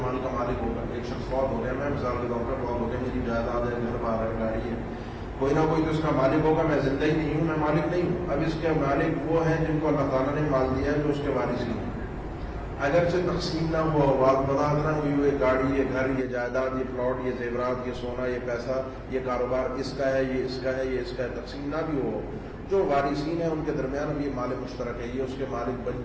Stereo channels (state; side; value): identical; both; correlation 1.00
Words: مال کا مالک ہوگا. ایک شخص فوت ہو گیا، میں مثال کے طور پر فوت ہو گیا، میری جائیداد ہے، گھر بار ہے، گاڑی ہے، کوئی نہ کوئی تو اس کا مالک ہوگا. میں زندہ ہی نہیں ہوں، میں مالک نہیں ہوں. اب اس کے مالک وہ ہیں جن کو اللہ تعالیٰ نے مال دیا ہے، جو اس کے وارثین ہیں. اگرچہ تقسیم نہ ہوا، وضاحت نہ ہوئی، یہ گاڑی، یہ گھر، یہ جائیداد، یہ پلاٹ، یہ زیورات، یہ سونا، یہ پیسہ، یہ کاروبار اس کا ہے، یہ اس کا ہے، یہ اس کا ہے، تقسیم نہ بھی ہو، جو وارثین ہیں ان کے درمیان اب یہ مال مشترک ہے، یہ اس کے مالک